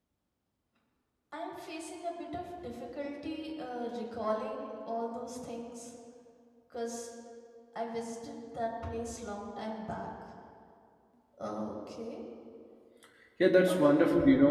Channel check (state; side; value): identical; both; correlation 1.00